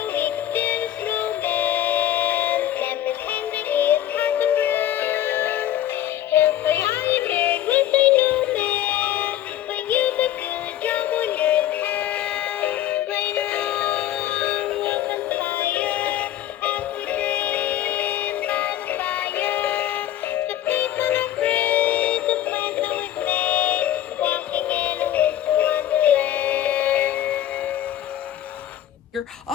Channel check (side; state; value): right; quieter; 12.4 dB